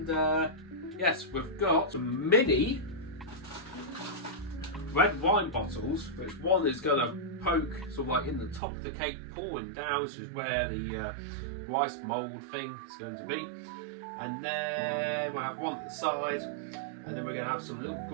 yes, we've got some mini red wine bottles, which one is going to poke sort of like in the top of the cake, pouring down, which is where the rice mould thing is going to be. And then we'll have one at the side, and then we're going to have some little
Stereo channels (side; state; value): left; drops out; at 8.6 s